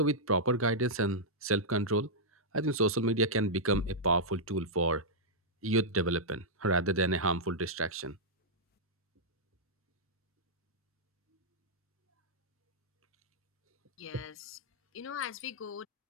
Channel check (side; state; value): both; normal; correlation -0.08